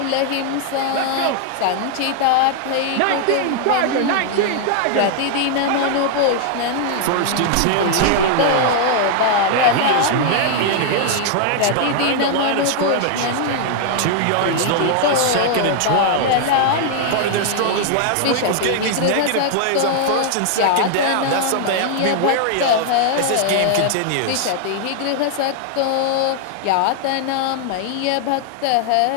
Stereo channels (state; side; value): different; both; correlation 0.00